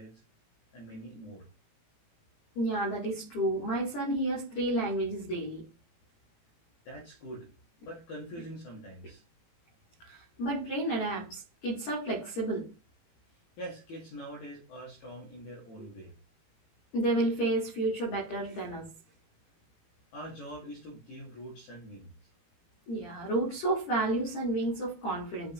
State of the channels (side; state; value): right; late; 18 ms